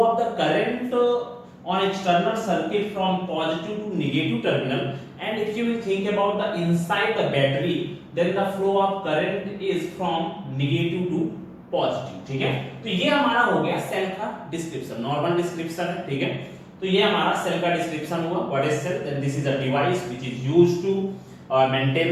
of the current on external circuit from positive to negative terminal, and if you will think about the inside the battery, then the flow of current is from negative to positive, ठीक है। तो ये हमारा हो गया cell का description, normal description है, ठीक है। तो ये हमारा सेल का डिस्क्रिप्शन हुआ। What is cell, then this is a device which is used to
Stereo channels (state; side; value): identical; both; correlation 1.00